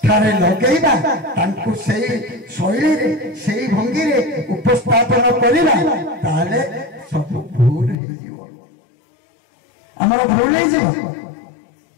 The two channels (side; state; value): right; drops out; at 8.0 s